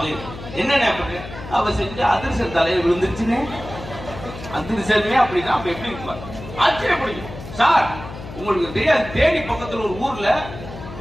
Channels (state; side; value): noise; left; hum, 13 dB below the sound